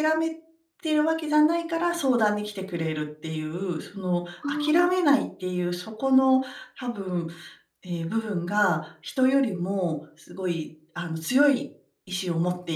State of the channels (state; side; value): identical; both; correlation 1.00